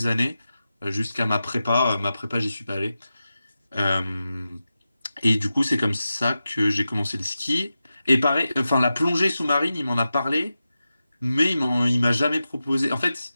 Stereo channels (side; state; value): both; inverted; correlation -0.92